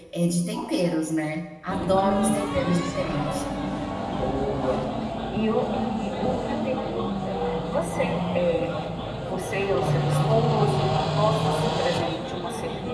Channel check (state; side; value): identical; both; correlation 1.00